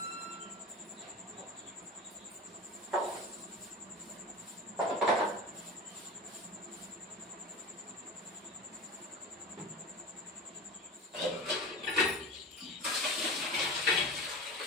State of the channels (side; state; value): both; normal; correlation 0.31